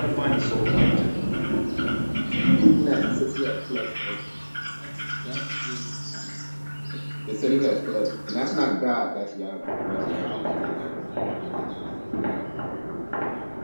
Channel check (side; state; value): both; inverted; correlation -1.00